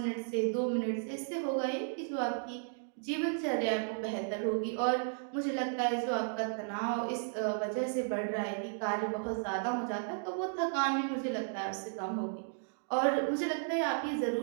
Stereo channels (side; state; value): left; silent; digital silence